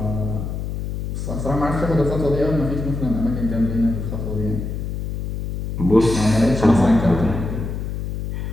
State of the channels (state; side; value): noise; left; hum, 4 dB below the sound